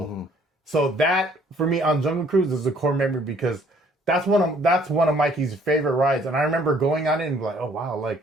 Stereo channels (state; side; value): normal; both; correlation 0.61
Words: Mm-hmm. So that for me on Jungle Cruise is a core memory because that's one of Mikey's favorite rides, and I remember going on it and like, oh wow, like